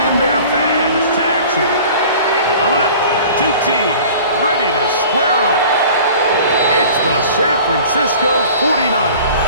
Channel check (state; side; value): inverted; both; correlation -0.44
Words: their fans to action. Coming up, two teams ready to square off. It's the San Francisco 49ers